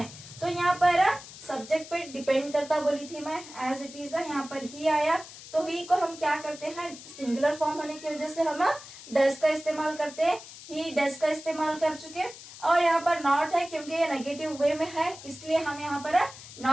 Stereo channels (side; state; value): left; noise; hiss, 16 dB below the sound